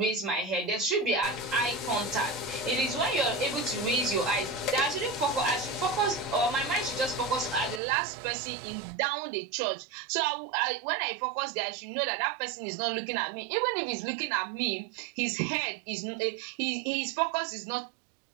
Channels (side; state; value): left; drops out; at 7.8 s